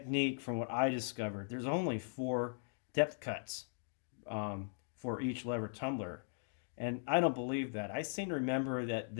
from what I discovered, there's only 4 depth cuts for each lever tumbler. And I don't believe that. I seem to remember that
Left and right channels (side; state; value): right; silent; digital silence